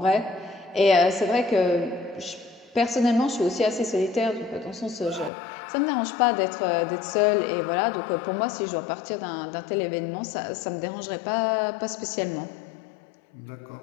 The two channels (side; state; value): right; drops out; at 5.3 s